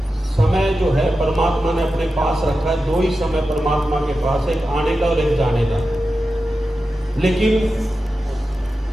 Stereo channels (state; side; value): normal; both; correlation 0.92